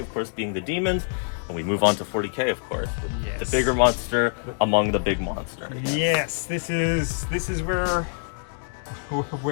course, being the demons. And we move on to 40k, of course. Yes. The bigger monster among the big monster. Yes, this is where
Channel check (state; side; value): silent; right; digital silence